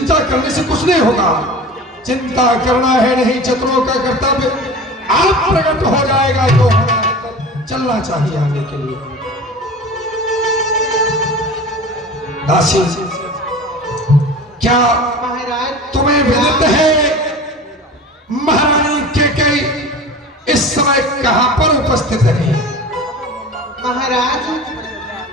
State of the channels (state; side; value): normal; both; correlation 0.36